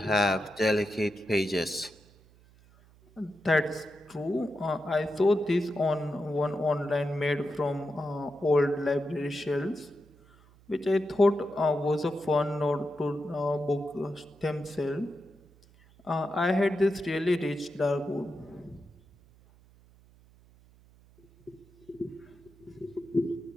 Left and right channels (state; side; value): noise; right; hum, 27 dB below the sound